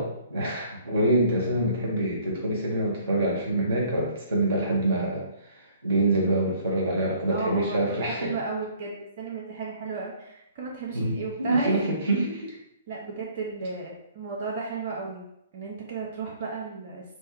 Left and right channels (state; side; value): inverted; both; correlation -0.57